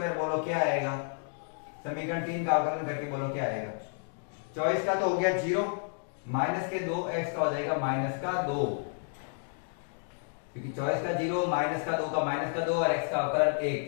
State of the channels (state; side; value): silent; right; 55 dB below the other